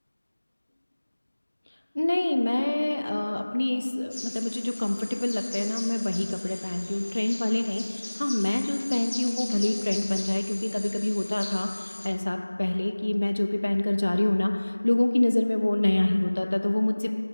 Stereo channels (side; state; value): both; inverted; correlation -1.00